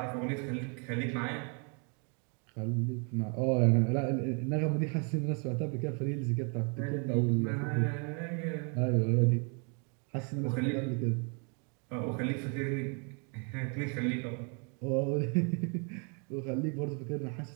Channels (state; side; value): quieter; left; 37.0 dB